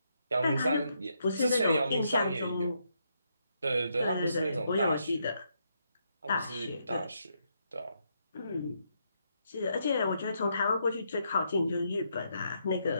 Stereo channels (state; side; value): inverted; both; correlation -0.78